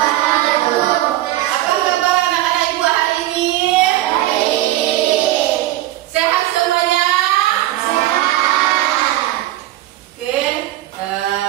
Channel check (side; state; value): left; quieter; 15.4 dB